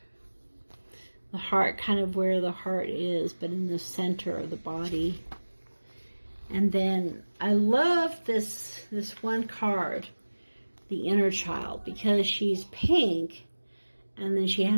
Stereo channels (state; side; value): inverted; both; correlation -1.00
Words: the heart, kind of where the heart is, but in the center of the body. And then I love this one card, the inner child, because she's pink, and then she